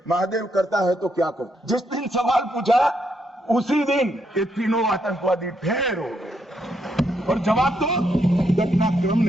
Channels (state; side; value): normal; both; correlation 0.77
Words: महादेव करता है तो क्या करता, जिस दिन सवाल पूछा उसी दिन ये तीनों आतंकवादी ढेर हो गए और जवाब तो घटनाक्रम